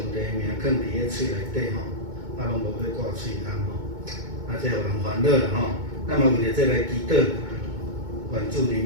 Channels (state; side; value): late; left; 2.2 ms